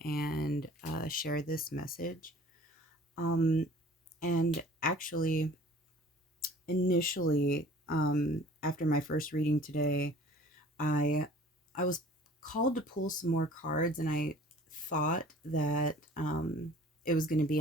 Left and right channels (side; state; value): both; normal; correlation 0.48